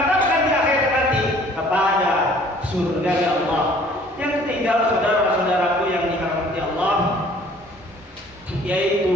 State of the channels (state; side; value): noise; right; rumble, 29 dB below the sound